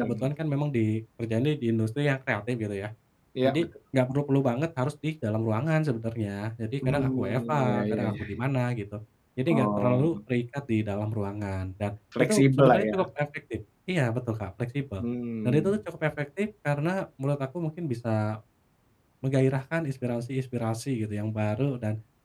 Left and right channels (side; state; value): both; identical; correlation 1.00